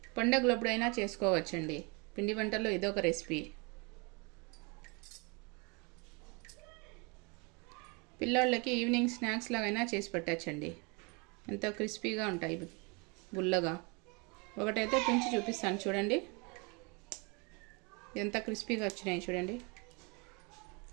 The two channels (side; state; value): left; quieter; 30.5 dB